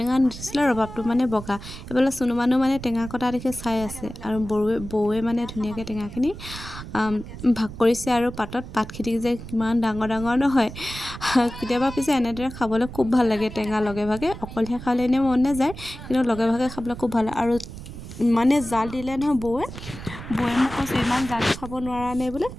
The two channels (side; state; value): right; noise; rumble, 12 dB below the sound